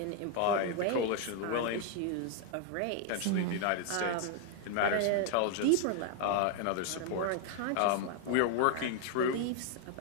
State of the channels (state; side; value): different; both; correlation 0.00